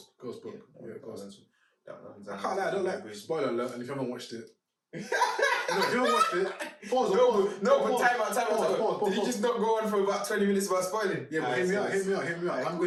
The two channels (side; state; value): both; identical; correlation 1.00